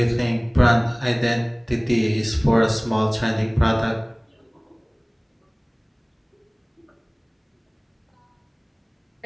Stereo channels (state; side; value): identical; both; correlation 1.00